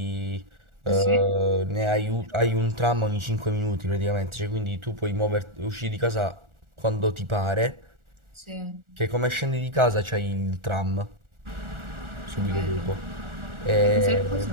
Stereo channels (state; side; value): late; left; 1.4 ms